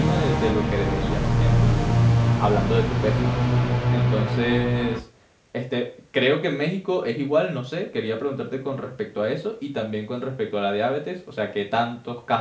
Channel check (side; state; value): both; identical; correlation 1.00